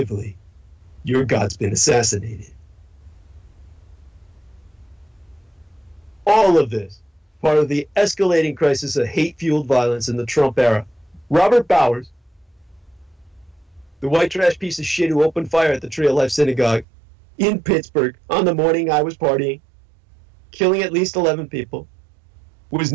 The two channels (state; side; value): drops out; left; at 16.9 s